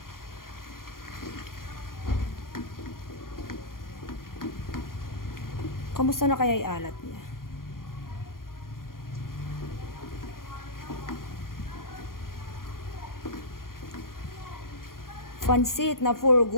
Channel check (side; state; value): right; late; 0.91 ms